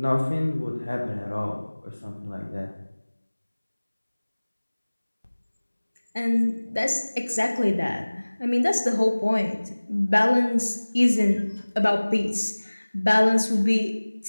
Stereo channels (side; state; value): both; inverted; correlation -1.00